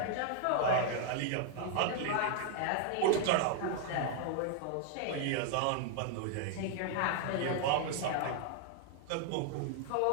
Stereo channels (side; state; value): both; different; correlation 0.00